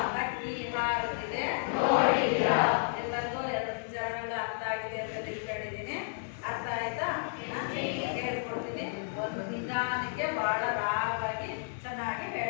ಹಕ್ಕಿ ಹಾರುತ್ತಿದೆ. ಎಲ್ಲರಿಗೂ 2 ಚರಣಗಳು ಅರ್ಥ ಆಗಿದೆ ಅಂತ ತಿಳ್ಕೊಂಡಿದ್ದೀನಿ. ಅರ್ಥ ಆಯ್ತಾ? ಹೇಳ್ಕೊಡ್ತೀನಿ. ಒಂದು ನಿಧಾನಕ್ಕೆ ಬಹಳ ರಾಗವಾಗಿ ಚೆನ್ನಾಗಿ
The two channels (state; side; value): silent; right; 56 dB below the other